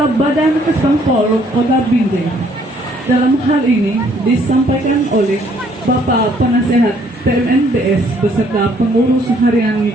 Badan Kesbangpol Kota Binjai. Dalam hal ini disampaikan oleh Bapak Penasehat PMNBS beserta pengurus harian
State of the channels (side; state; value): both; normal; correlation 0.64